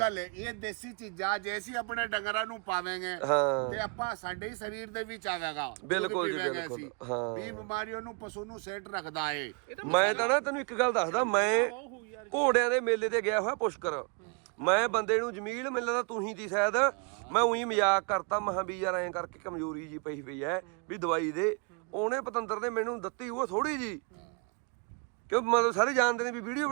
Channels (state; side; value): quieter; left; 34.9 dB